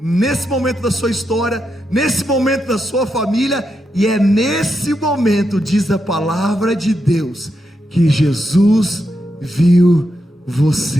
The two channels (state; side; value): normal; both; correlation 0.84